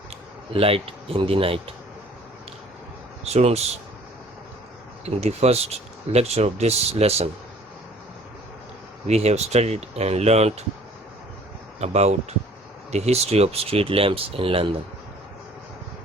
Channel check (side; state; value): both; normal; correlation 0.53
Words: Light in the Night. Students, in the first lecture of this lesson, we have studied and learnt about the history of street lamps in London.